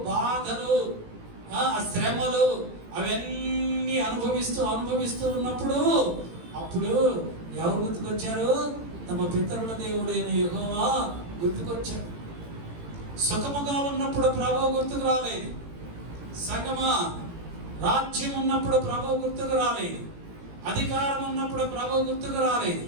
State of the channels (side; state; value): left; late; 18 ms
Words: బాధలు, శ్రమలు అవన్నీ అనుభవిస్తూ ఉన్నప్పుడు అప్పుడు ఎవరు గుర్తుకొచ్చారు? తమ పితరుల దేవుడైన యెహోవా గుర్తుకొచ్చాడు. సుఖముగా ఉన్నప్పుడు ప్రభువు గుర్తుకు రాలేదు. సంగమా, రాజ్యం ఉన్నప్పుడు ప్రభువు గుర్తుకు రాలేదు. అధికారం ఉన్నప్పుడు ప్రభువు గుర్తుకు రాలేదు.